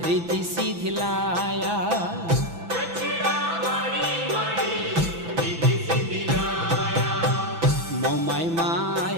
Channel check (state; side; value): late; left; 6.0 ms